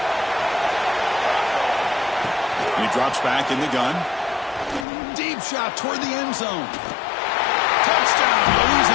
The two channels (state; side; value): drops out; right; at 4.9 s